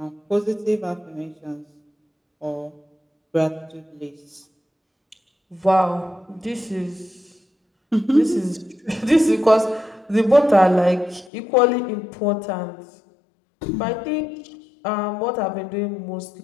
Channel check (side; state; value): right; drops out; at 11.3 s